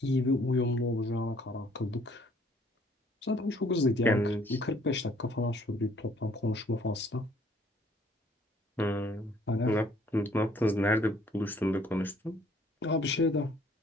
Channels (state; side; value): normal; both; correlation 0.61